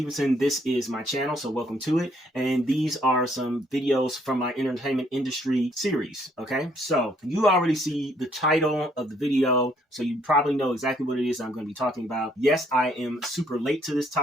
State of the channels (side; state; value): both; normal; correlation 0.67